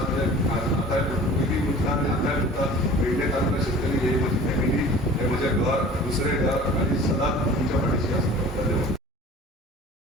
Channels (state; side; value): normal; both; correlation 0.44